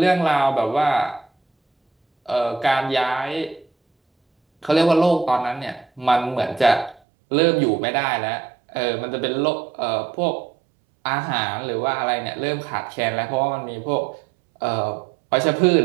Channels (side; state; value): left; drops out; at 7.0 s